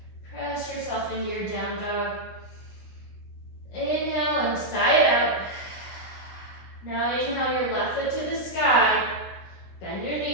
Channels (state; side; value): late; right; 16 ms